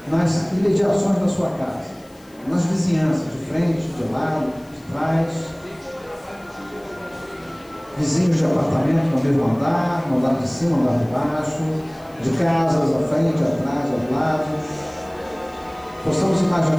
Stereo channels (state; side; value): noise; left; hiss, 29 dB below the sound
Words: nas imediações da sua casa, nas vizinhanças, de frente, de lado, de trás, vizinhos de apartamento no mesmo andar, no andar de cima, no andar de baixo, de casas à frente, atrás, aos lados. Possamos